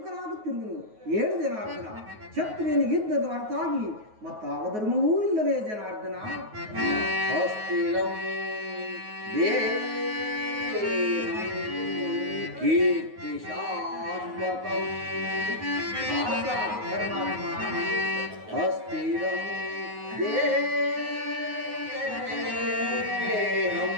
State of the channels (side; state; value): left; late; 9.4 ms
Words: 7 ಜನಾರ್ದನ. ಕ್ಷತ್ರಿಯನಿಗೆ ಯುದ್ಧದ ಹೊರತಾಗಿ ಮತ್ತಾವ ಧರ್ಮವೂ ಇಲ್ಲವೇ ಜನಾರ್ದನ? ಕೀರ್ತಿ ಶಾಶ್ವತಂ ಅಸ್ಥಿರಂ ದೇಹಂ